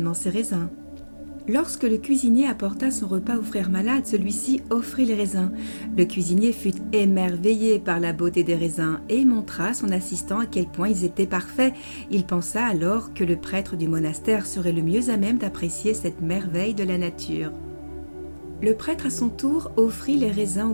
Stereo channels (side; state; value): both; inverted; correlation -1.00